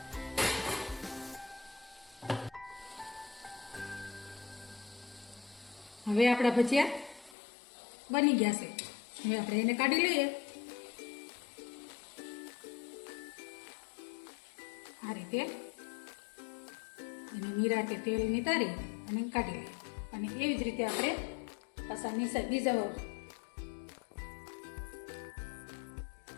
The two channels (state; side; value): drops out; right; at 7.4 s